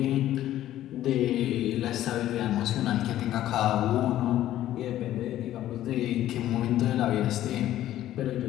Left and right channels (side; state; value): right; quieter; 13.2 dB